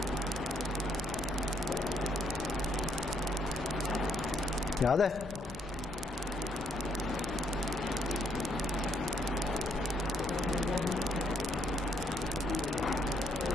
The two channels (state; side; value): normal; both; correlation 0.71